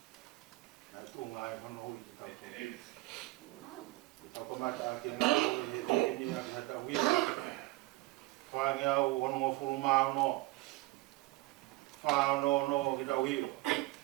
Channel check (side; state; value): left; quieter; 20.8 dB